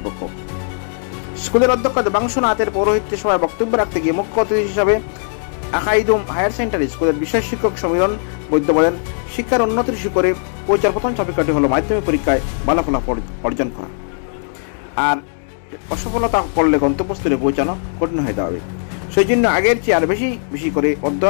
স্কুলের অধ্যক্ষ দেবাংশুনাথের পৌরোহিত্যে সভায় বক্তব্য রাখতে গিয়ে মুখ্য অতিথি হিসাবে আকাইদুম হায়ার সেকেন্ডারি স্কুলের বিষয় শিক্ষক সমীরণ বৈদ্য বলেন, শিক্ষার উন্নতির শিখরে পৌঁছার প্রথম চাবিকাঠি হল মাধ্যমিক পরীক্ষায় ভালো ফলাফল অর্জন করা, আর অসফলতা করলে গন্তব্যস্থলে পৌঁছানো কঠিন হয়ে যাবে। সেই জন্য আগের চেয়ে আর বেশি করে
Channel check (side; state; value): right; silent; 67 dB below the other